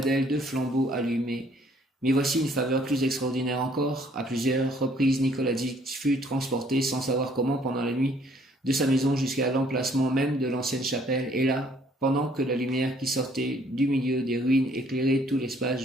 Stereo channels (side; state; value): both; normal; correlation 0.62